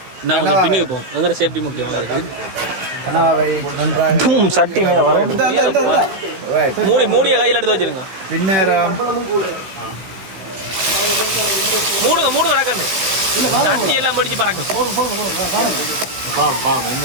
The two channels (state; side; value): late; left; 16 ms